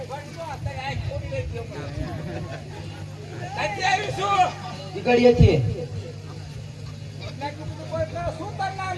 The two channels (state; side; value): identical; both; correlation 1.00